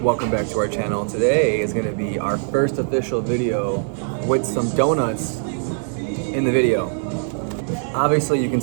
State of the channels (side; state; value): left; silent; 65 dB below the other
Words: back to our channel. Today is going to be our first official video with some donuts in the video. Obviously, you can